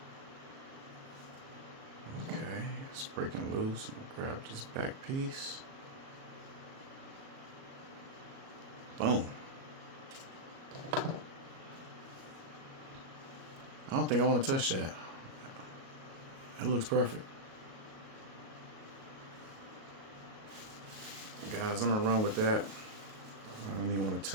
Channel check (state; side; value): late; left; 37 ms